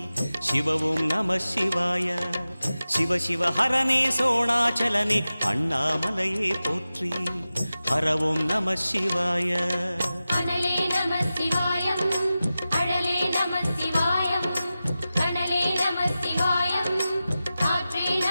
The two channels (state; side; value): inverted; both; correlation -0.94